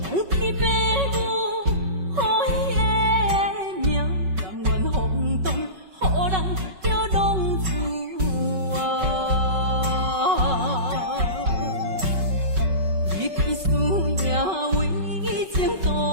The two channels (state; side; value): late; left; 5.3 ms